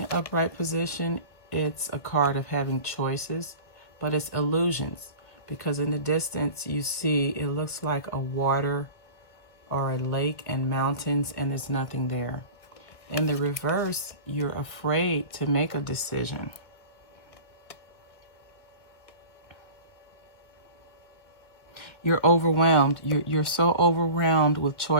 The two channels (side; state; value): right; late; 1.6 ms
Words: upright position, it's a card of having choices, but it's illusions, because in the distance you see it looks like a water or a lake and mountains, and there's nothing there. In the reverse, you're afraid to make a decision. You're overwhelmed. You're so overwhelmed with